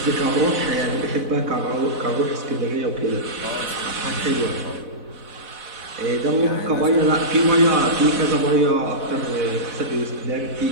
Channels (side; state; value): left; late; 4.0 ms